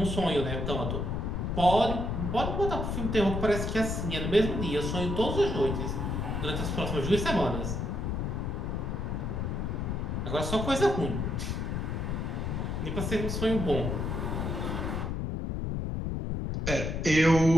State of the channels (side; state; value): left; noise; rumble, 2 dB below the sound